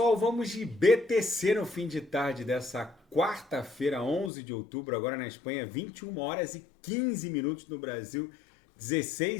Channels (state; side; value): drops out; right; at 4.3 s